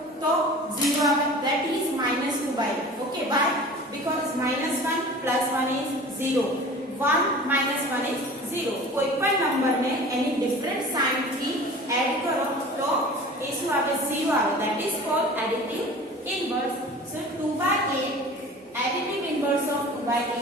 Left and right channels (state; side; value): normal; both; correlation 0.41